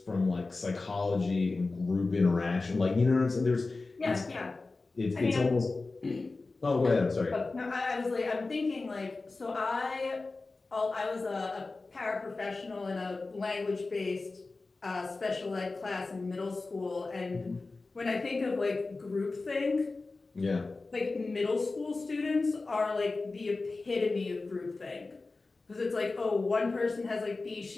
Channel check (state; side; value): quieter; right; 3.6 dB